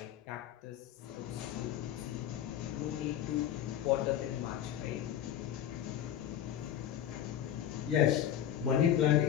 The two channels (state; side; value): quieter; right; 10.5 dB